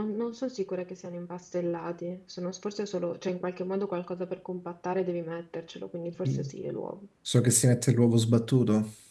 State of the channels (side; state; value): both; identical; correlation 1.00